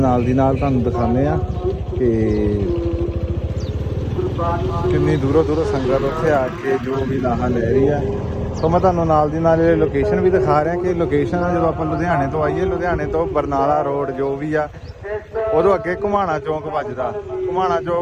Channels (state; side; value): identical; both; correlation 1.00